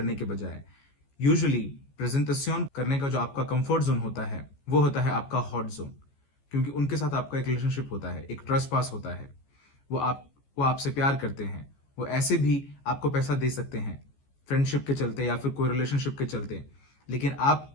के बजाय। यूजुअली प्रेजेंटेशन करने का जो आपका कंफर्ट जोन होता है वो होता है आपका हॉट जोन, क्योंकि उनके साथ आपका एक रिलेशनशिप होता है, एक ट्रस्ट पास होता है। वो आपसे प्यार करते हैं, वो ऐसे भी आपको पैसा दे सकते हैं फ्रेंडशिप के चलते या फिर कोई रिलेशनशिप के चलते, लेकिन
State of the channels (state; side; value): late; right; 14 ms